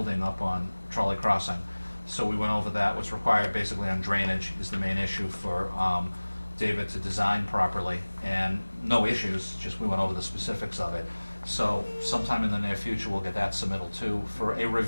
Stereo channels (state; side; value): inverted; both; correlation -1.00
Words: up on Trolley Crossing. So we went over that. What's required basically on drainage is the main issue for David to design properly, and no issues, just we went over the specifics of it. So sometime in the near future we'll get that submittal too for a